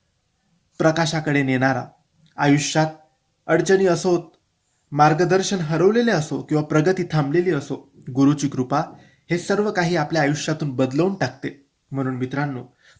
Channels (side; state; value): both; identical; correlation 1.00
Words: प्रकाशाकडे नेणारा, आयुष्यात अडचणी असोत, मार्गदर्शन हरवलेले असो किंवा प्रगती थांबलेली असो, गुरुची कृपा हे सर्व काही आपल्या आयुष्यातून बदलवून टाकते. म्हणून मित्रांनो,